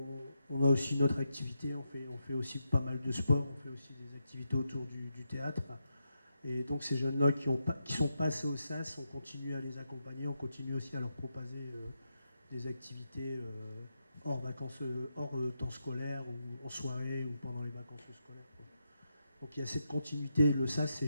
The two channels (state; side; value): inverted; both; correlation -0.84